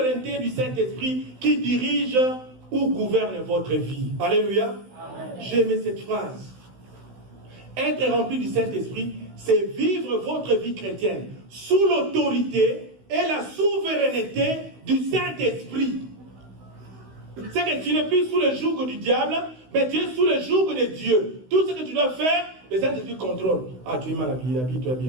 du Saint-Esprit qui dirige ou gouverne votre vie. Alléluia. J'ai aimé cette phrase. Être rempli du Saint-Esprit, c'est vivre votre vie chrétienne sous l'autorité et la souveraineté du Saint-Esprit. C'est que tu n'es plus sous le joug du diable, mais tu es sous le joug de Dieu. Tout ce que tu dois faire, le Saint-Esprit contrôle. Ah, tu es mal habillé, habille-toi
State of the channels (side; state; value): left; late; 16 ms